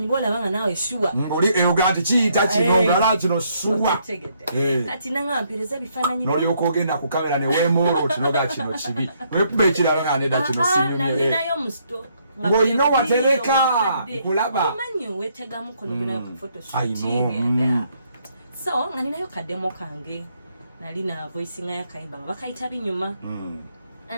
bwolabanga naawe shuwa. Ngoli eyogati kiyita kino ngala kino shuwa. Kati nanga mpereza ebifaananyi byo. N'olyoka ogenda ku kamera ne weemoola otinoga kino kibi. Wekuba ekirala nga nedda kino sinyumye. Nalinayo mu store. Ng'olina watereka kulaba. Omanyi weetegamu kono genayo ku photoshoot. So nga ninayo kademo kange. Nalina voicing y'akayimba nga bakayita binyuma.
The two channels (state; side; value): inverted; both; correlation -0.71